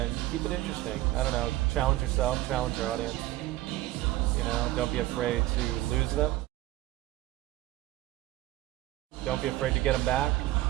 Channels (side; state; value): left; quieter; 16.5 dB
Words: keep it interesting. I don't know, challenge yourself, challenge your audience. You know, don't be afraid to lose them. Don't be afraid to get them back.